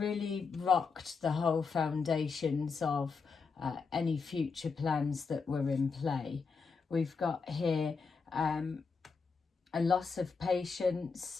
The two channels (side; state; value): right; quieter; 5.0 dB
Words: rocked the whole foundations of any future plans that were in play. We've got here a loss of patience,